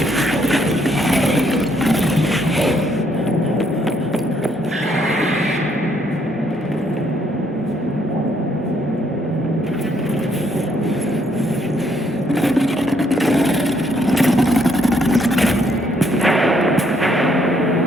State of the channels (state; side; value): normal; both; correlation 0.70